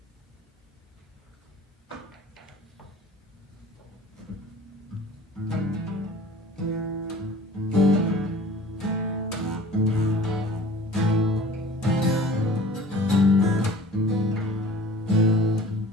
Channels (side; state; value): both; normal; correlation 0.46